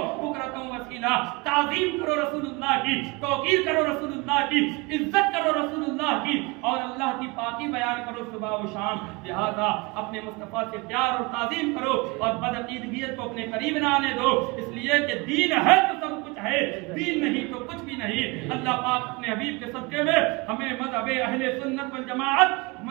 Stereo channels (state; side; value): quieter; left; 26.1 dB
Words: بکرۃ وصیلا تعظیم کرو رسول اللہ کی توقیر کرو رسول اللہ کی عزت کرو رسول اللہ کی اور اللہ کی پاکی بیان کرو صبح و شام لہذا اپنے مصطفیٰ سے پیار اور تعظیم کرو اور بدعقیدگیت کو اپنے قریب نہ آنے دو اس لیے کہ دین ہے تو سب کچھ ہے دین نہیں تو کچھ بھی نہیں اللہ پاک اپنے حبیب کے صدقے میں ہمیں مذہب اہل سنت والجماعت